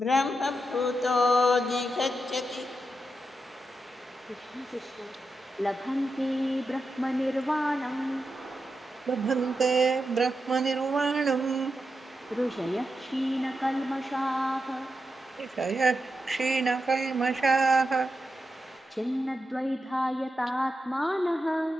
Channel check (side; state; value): both; normal; correlation 0.87